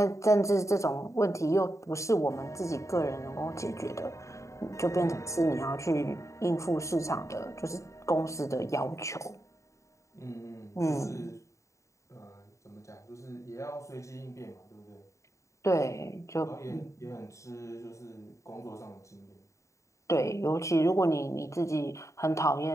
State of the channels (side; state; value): right; late; 0.15 ms